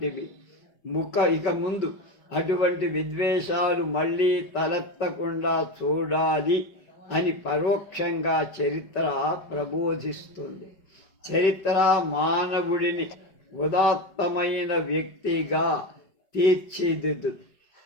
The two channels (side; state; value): right; late; 5.2 ms